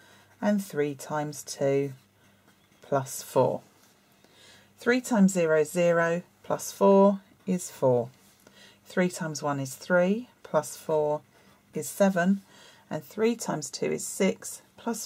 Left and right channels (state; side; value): identical; both; correlation 1.00